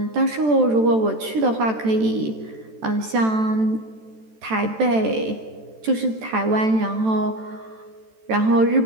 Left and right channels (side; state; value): left; late; 14 ms